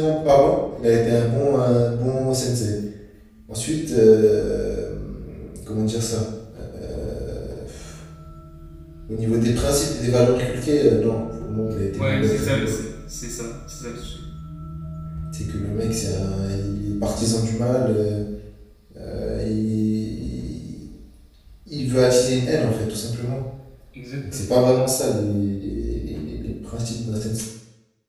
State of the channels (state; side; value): identical; both; correlation 1.00